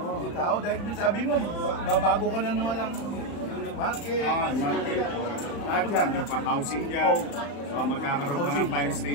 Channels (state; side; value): late; right; 35 ms